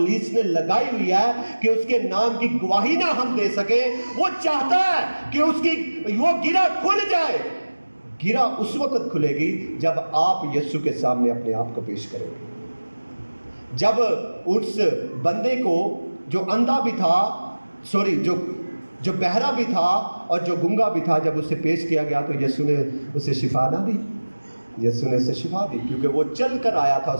نے لگائی ہوئی ہے کہ اس کے نام کی گواہی نہ ہم دے سکیں، وہ چاہتا ہے کہ اس کی وہ گرہ کھل جائے۔ گرہ اس وقت کھلے گی جب آپ یسوع کے سامنے اپنے آپ کو پیش کریں گے۔ جب اس بندے کو جو اندھا بھی تھا، جو بہرا بھی تھا اور جو گنگا بھی تھا، جب اسے پیش کیا گیا تو یسوع نے اسے شفا نہ دی، یسوع نے اسے شفا دی، کیونکہ وہ چل کر آیا تھا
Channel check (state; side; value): inverted; both; correlation -1.00